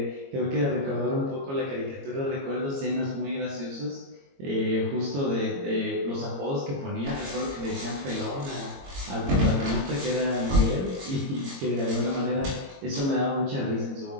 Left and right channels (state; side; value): late; left; 22 ms